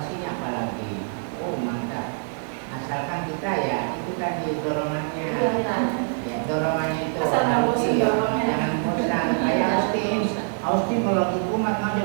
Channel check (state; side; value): silent; left; 61 dB below the other